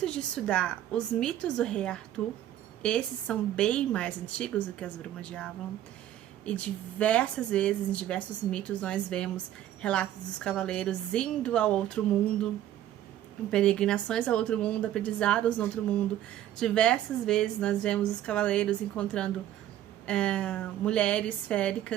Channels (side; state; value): left; quieter; 12.2 dB